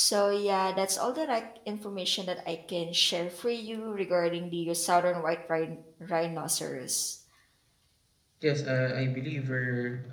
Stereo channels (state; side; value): identical; both; correlation 1.00